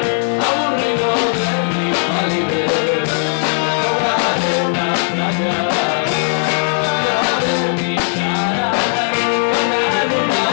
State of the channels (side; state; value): right; silent; digital silence